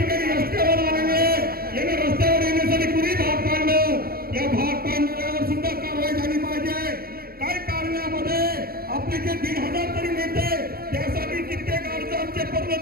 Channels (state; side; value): late; left; 0.44 ms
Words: रस्त्यावर आलेले, यांना रस्त्यावर येण्यासाठी कुणी भाग पाडलं? या भाग पाडणाऱ्यावर सुद्धा कारवाई झाली पाहिजे. काय कारणामध्ये आपले जे 1,500 तरी नेते त्यासाठी कित्येक अर्ज आमचे